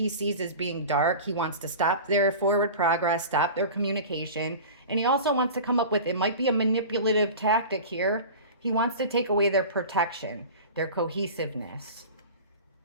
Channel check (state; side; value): inverted; both; correlation -0.35